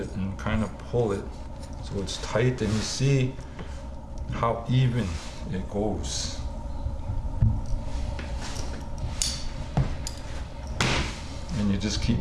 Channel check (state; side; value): identical; both; correlation 1.00